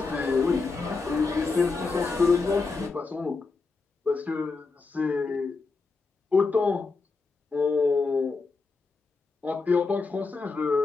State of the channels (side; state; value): right; quieter; 4.1 dB